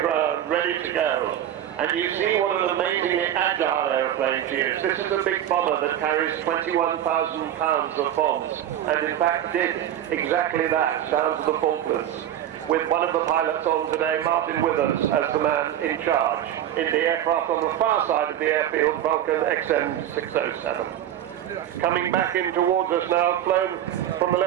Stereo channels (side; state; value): left; quieter; 11.2 dB